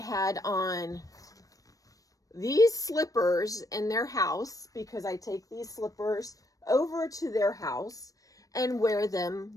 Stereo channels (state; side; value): late; right; 0.17 ms